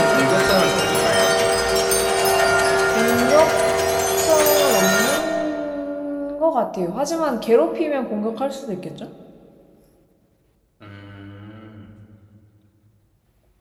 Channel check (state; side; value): identical; both; correlation 1.00